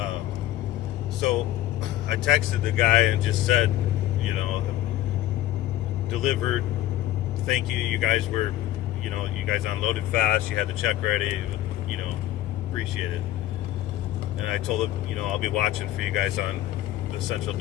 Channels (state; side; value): quieter; right; 14.2 dB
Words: So I texted the guy and just said, you know, delivered. Thank you. You guys were, you know, you guys unloaded fast. You had the check ready. You know, Appreciate it. And I told him, you know, I'll be watching for you guys on the central